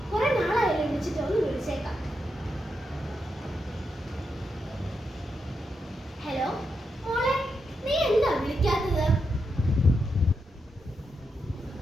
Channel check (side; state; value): both; normal; correlation 0.84